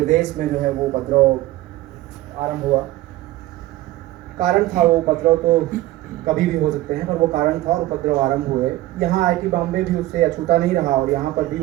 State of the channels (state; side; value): quieter; left; 16.6 dB